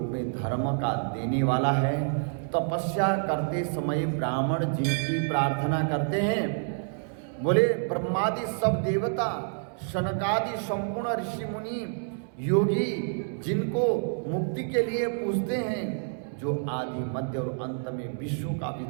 में धर्म का देने वाला है, तपस्या करते समय ब्राह्मण जिनकी प्रार्थना करते हैं, बोले ब्रह्मादि सब देवता, शनकादि संपूर्ण ऋषि मुनि योगी जिनको मुक्ति के लिए पूजते हैं, जो आदि मध्य और अंत में विश्व का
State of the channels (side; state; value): left; silent; digital silence